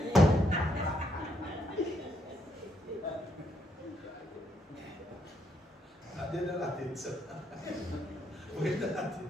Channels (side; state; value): both; normal; correlation 0.74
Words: il dans la tête, ça. Oui, dans la